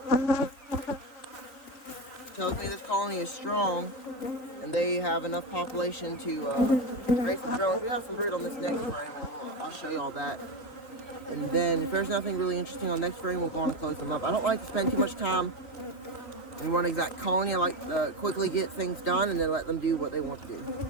Tells me this colony is strong and they have enough population to raise some drones. We have some brood on this next frame, and I'll show you all that. And then if there's nothing really interesting on the next frame, we'll go on and close them up. I don't like to spend too much time in one exact colony. I like to quickly get things done and then let them do what they want to do.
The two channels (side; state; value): right; late; 3.9 ms